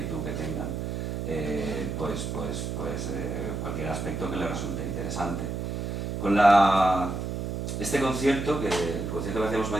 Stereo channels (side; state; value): right; noise; hum, 3 dB below the sound